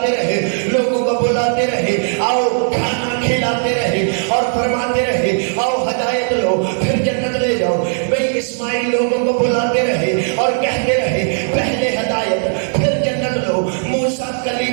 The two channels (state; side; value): silent; left; 68 dB below the other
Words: رہے، لوگوں کو بلاتے رہے آؤ کھانا کھلاتے رہے اور فرماتے رہے آؤ ہدایت لو پھر جنت لے جاؤ۔ بھئی اسماعیل لوگوں کو بلاتے رہے اور کہتے رہے پہلے ہدایت پھر جنت لو۔ موسیٰ